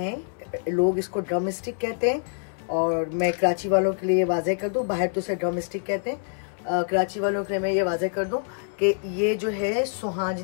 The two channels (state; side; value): silent; right; 61 dB below the other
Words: लोग इसको ड्रम स्टिक कहते हैं, और मैं कराची वालों के लिए वाज़ेह कर दूं, बाहर तो उसे ड्रम स्टिक कहते हैं, कराची वालों के लिए मैं ये वाज़ेह कर दूं कि ये जो है